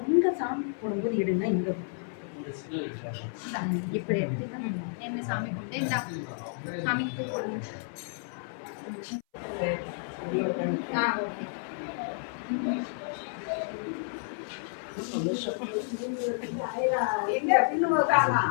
சாமி போடும்போது எடுங்க இங்க இப்படி எடுத்துதான் என்ன சாமி கும்பிட்டு இந்த சாமிக்கு போடுங்க.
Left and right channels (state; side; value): silent; right; 57 dB below the other